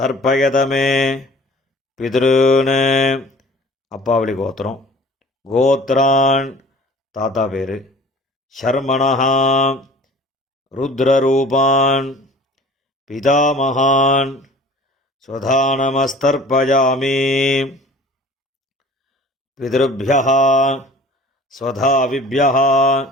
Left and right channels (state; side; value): normal; both; correlation 0.46